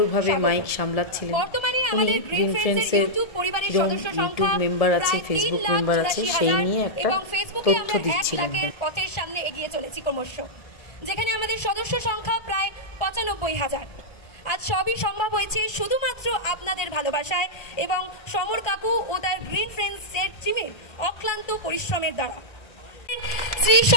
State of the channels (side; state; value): right; late; 1.3 ms